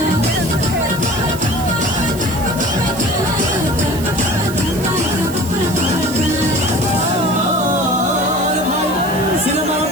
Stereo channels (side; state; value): right; noise; hiss, 13 dB below the sound